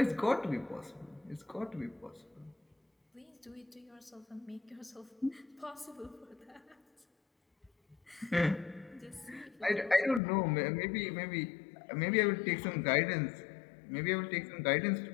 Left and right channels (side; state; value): right; drops out; at 10.2 s